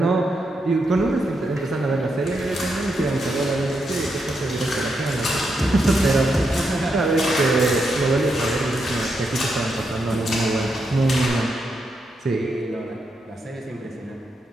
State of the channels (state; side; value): normal; both; correlation 0.82